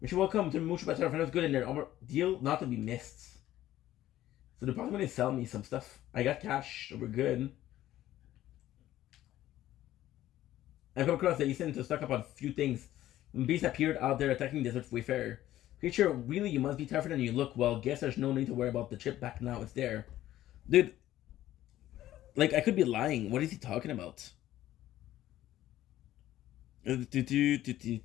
You're welcome to Mucho Better. If it was good in there, deal not to be missed. So they're probably gonna sell me some stuff. I got cash, so we're good. I come across that you seem to stock up on a few things. When beasts appeared out there attacking desert wayfarer. Creature, really, you must be tougher than you look. Well, guess there's no need to worry about the chip back now. It's there. Dude, like, I could be lying. What is he talking about?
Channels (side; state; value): right; quieter; 13.8 dB